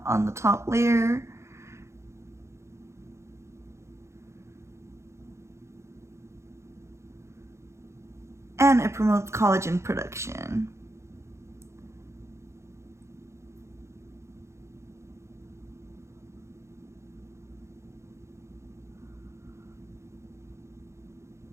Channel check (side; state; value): left; late; 0.13 ms